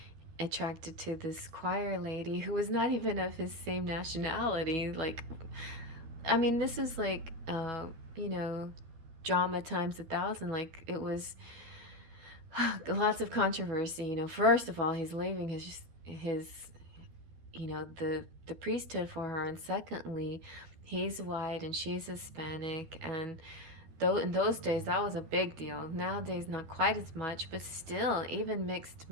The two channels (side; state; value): left; late; 12 ms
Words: attracted to this choir lady who was not even of his same nationality. Like, I mean, this is like, you know, drama times 1,000. Like, it was lots of controversy. You know, first of all, he's leaving his you know, the priesthood for her, and secondly, he's white and she's Hispanic, and though in those days that was a big deal. Nowadays not quite as much, but still, even mixed